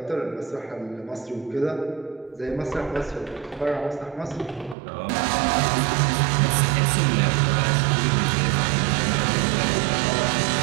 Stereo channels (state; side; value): drops out; left; at 4.8 s